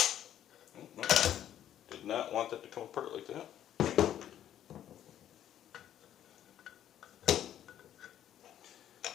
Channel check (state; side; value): quieter; right; 11.0 dB